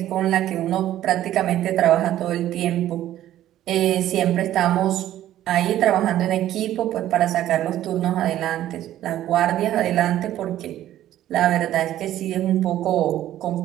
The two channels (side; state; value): left; quieter; 12.9 dB